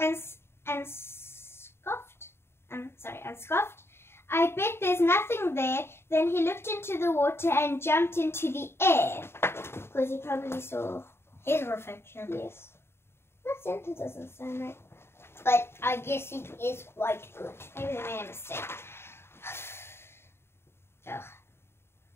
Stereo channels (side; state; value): right; late; 0.12 ms